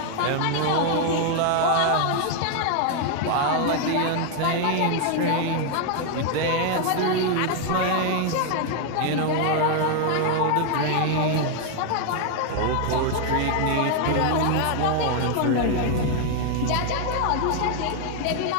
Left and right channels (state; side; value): different; both; correlation 0.00